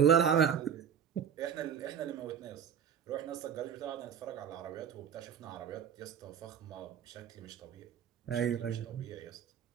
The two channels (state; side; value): quieter; left; 8.3 dB